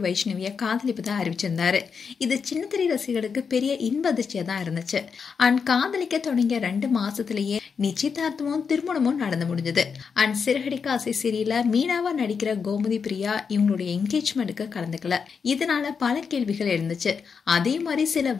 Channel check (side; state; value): right; quieter; 5.9 dB